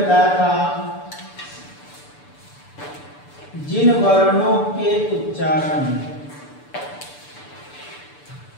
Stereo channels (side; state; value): right; late; 6.9 ms